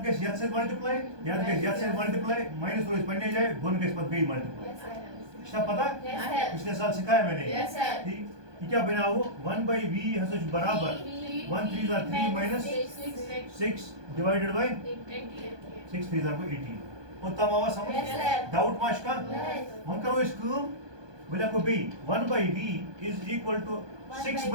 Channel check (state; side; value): late; left; 1.2 ms